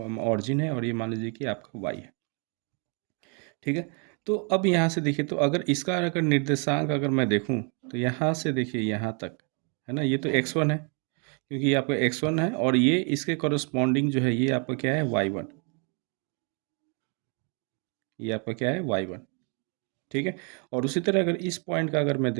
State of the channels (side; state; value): left; quieter; 37.3 dB